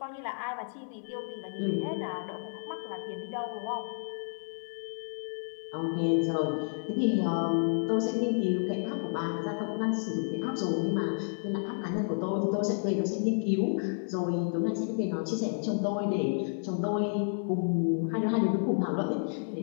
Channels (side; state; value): right; silent; digital silence